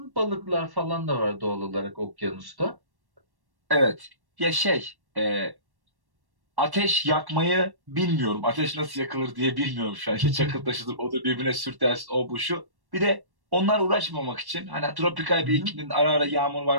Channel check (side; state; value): left; late; 1.1 ms